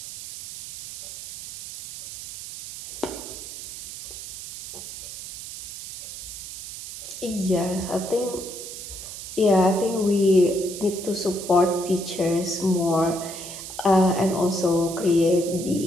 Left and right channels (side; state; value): right; noise; hiss, 10 dB below the sound